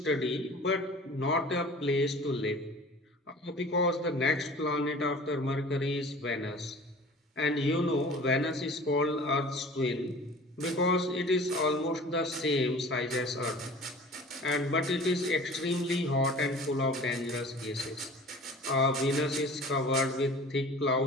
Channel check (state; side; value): normal; both; correlation 0.43